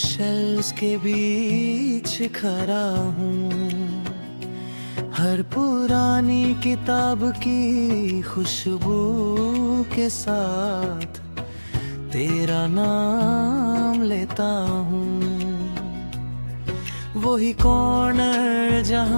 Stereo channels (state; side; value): inverted; both; correlation -1.00